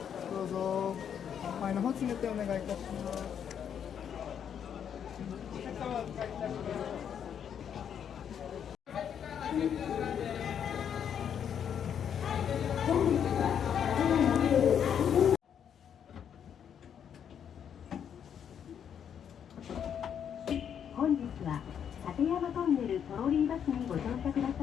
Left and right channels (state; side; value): quieter; right; 8.4 dB